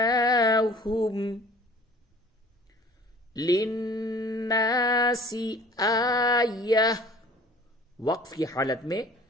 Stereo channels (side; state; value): both; normal; correlation 0.48